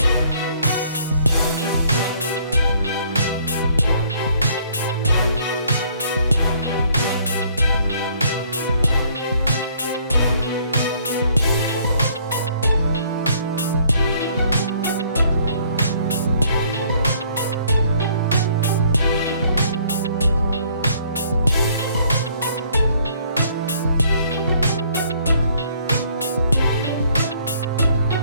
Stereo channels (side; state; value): both; inverted; correlation -0.62